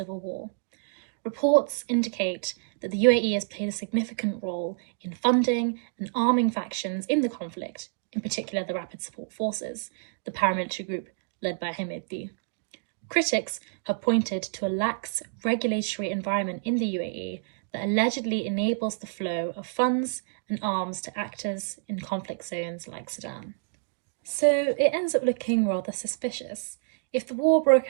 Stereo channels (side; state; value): left; silent; digital silence